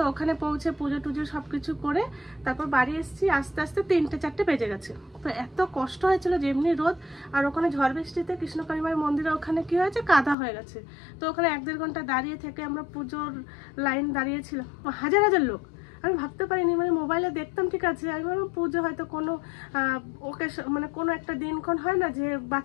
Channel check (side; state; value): right; drops out; at 10.4 s